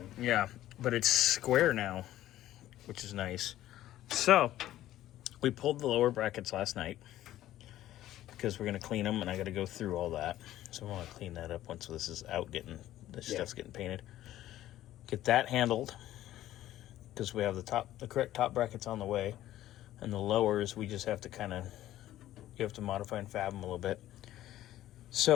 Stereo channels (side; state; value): right; quieter; 13.8 dB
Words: Yeah, but it's square now, which is nice. So we pulled the lower brackets last night because we're gonna clean them, and I got to go through all that. So I want to clean that up once this is out, stuff's getting painted. Get that handled because we have the correct top brackets on the way, and the lowers we just have to you have to modify and fab them a little bit.